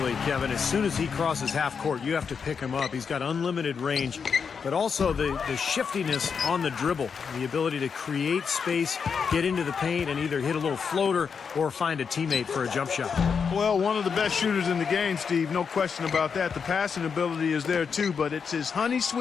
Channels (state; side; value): quieter; right; 6.1 dB